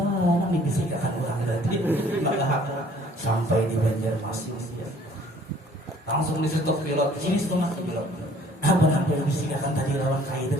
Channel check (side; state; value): both; normal; correlation 0.56